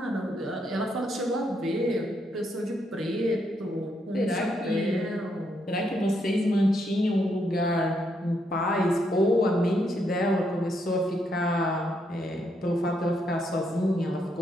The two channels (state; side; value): normal; both; correlation 0.77